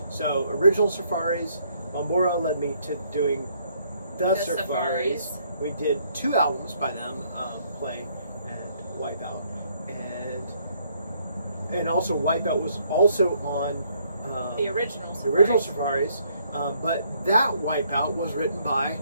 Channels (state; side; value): inverted; both; correlation -0.68